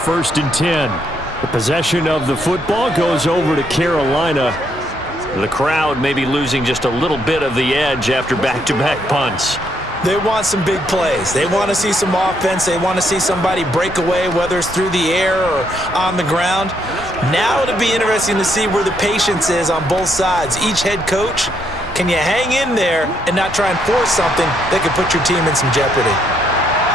and 10. The possession of the football goes over to Carolina. The crowd may be losing just a little bit of the edge after back-to-back punts. They want some big plays. They want to see some offense. They want to see somebody break away, whether it's through the air or on the ground. Now it'll be interesting to see where the patience is on both sides. Each head coach, can you hang in there and not try and force something that could put your team in some jeopardy?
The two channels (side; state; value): both; normal; correlation 0.74